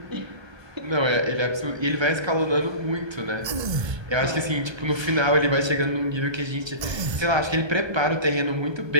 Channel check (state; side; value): late; left; 1.3 ms